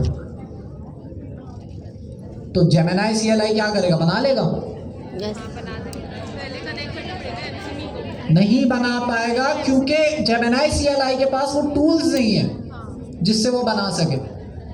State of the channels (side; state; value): both; identical; correlation 1.00